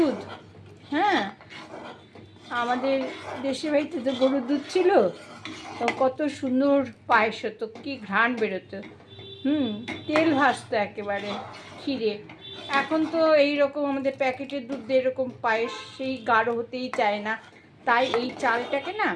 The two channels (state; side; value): identical; both; correlation 1.00